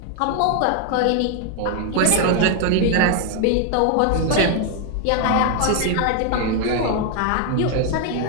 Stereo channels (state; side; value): different; both; correlation 0.01